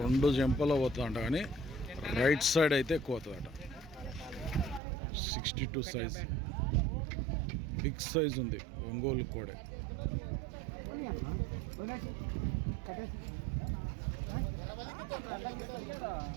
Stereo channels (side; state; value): left; drops out; at 4.8 s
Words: జంపలో పోతుందంట, కానీ రైట్ సైడ్ అయితే ఎక్కువ అవుతుందట. 62 సైజ్, బిగ్ సైజ్ ఉంది ఒంగోలు కోడే.